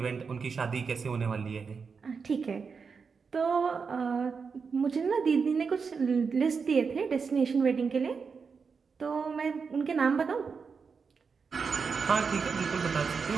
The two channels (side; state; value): left; quieter; 5.4 dB